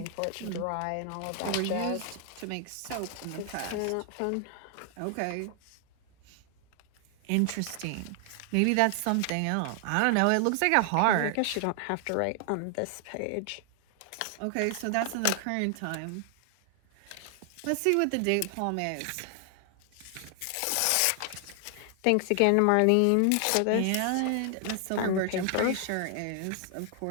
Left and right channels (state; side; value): different; both; correlation 0.00